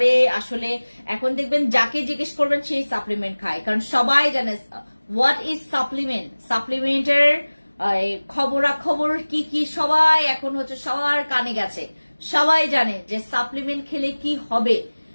আসলে এখন দেখবেন যাকে জিজ্ঞেস করবেন সেই সাপ্লিমেন্ট খায়, কারণ সবাই জানে হোয়াট ইজ সাপ্লিমেন্ট, সাপ্লিমেন্টের খবরাখবর কি কি সবাই এখন হচ্ছে সবার কানে গেছে, সবাই জানে যে সাপ্লিমেন্ট খেলে কি হবে।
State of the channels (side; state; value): both; inverted; correlation -1.00